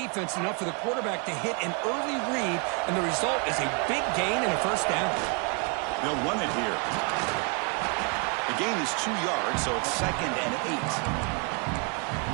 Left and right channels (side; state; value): left; quieter; 35.0 dB